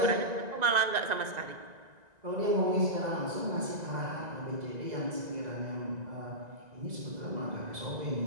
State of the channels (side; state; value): left; late; 2.0 ms